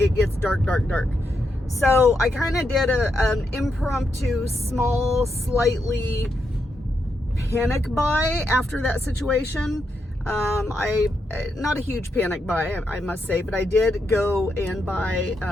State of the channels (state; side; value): normal; both; correlation 0.83